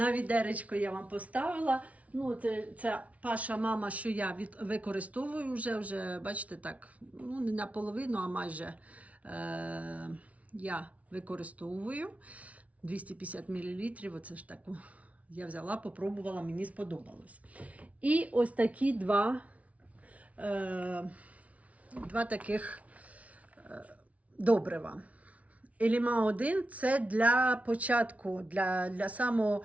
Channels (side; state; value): left; late; 0.067 ms